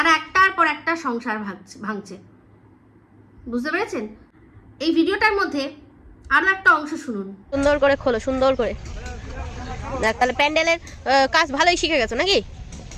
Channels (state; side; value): identical; both; correlation 1.00